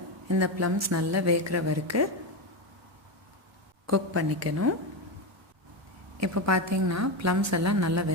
இந்த ப்ளம்ஸ் நல்லா வேகிற வரைக்கும் குக் பண்ணிக்கணும். இப்போ பார்த்திங்கன்னா ப்ளம்ஸ் எல்லாம் நல்லா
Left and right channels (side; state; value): both; normal; correlation 0.13